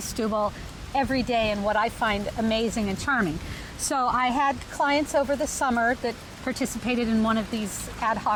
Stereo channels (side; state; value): both; identical; correlation 1.00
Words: every day and what I find amazing and charming. So I had clients over the summer that participated in one of these ad